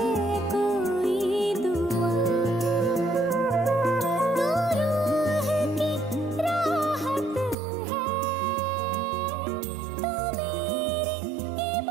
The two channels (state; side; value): drops out; left; at 7.6 s